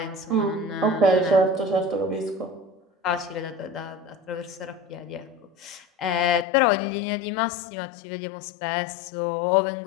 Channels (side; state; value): right; drops out; at 6.5 s